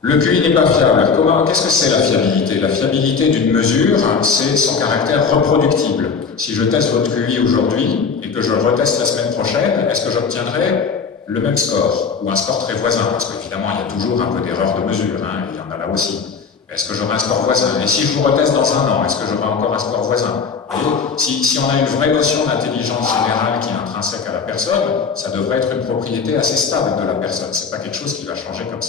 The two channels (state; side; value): quieter; right; 5.6 dB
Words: Le QI n'est pas fiable. Qu'est-ce que c'est la fiabilité? La fiabilité d'une mesure, c'est son caractère reproductible. Si je teste votre QI aujourd'hui et que je le reteste la semaine prochaine, est-ce que j'obtiendrai le même score ou un score très voisin? Parce qu'évidemment, il y a toujours un peu d'erreur de mesure, il y en a là aussi. Est-ce que j'aurai un score voisin? Et si je vous reteste dans un an, est-ce que j'aurai encore un score voisin? Si on a une vraie notion d'intelligence générale qui est intrinsèque à la personne, ça devrait être une propriété assez stable de la personne. C'est pas quelque chose qui va changer comme